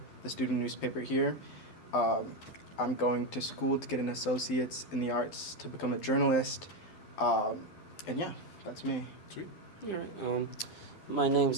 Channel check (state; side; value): late; right; 12 ms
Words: the student newspaper here. I'm going to school to get an associate's in the arts to become a journalist. And yeah, that's me. Sweet. All right. My